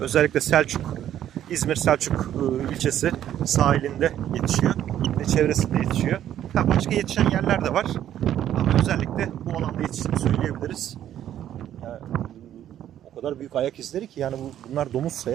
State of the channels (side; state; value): left; quieter; 11.2 dB